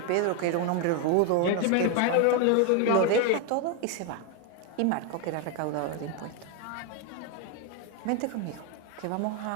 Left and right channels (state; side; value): different; both; correlation 0.01